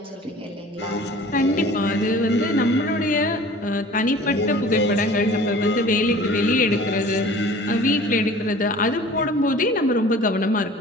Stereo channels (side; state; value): both; normal; correlation 0.45